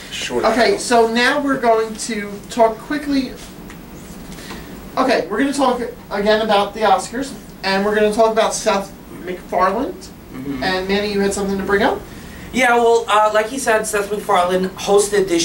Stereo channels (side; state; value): both; identical; correlation 1.00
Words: Sure. Okay, so now we're going to talk quickly. Okay, we're going to talk again about the Oscars, and we're going to talk about Seth McFarlane. And Manny, you had something to bring up? Yeah, well, like he said, Seth MacFarlane hosted